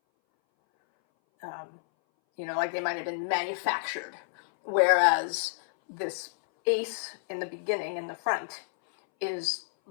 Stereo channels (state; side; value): silent; right; 58 dB below the other